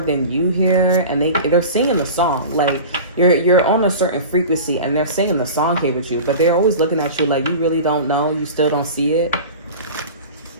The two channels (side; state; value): both; inverted; correlation -0.35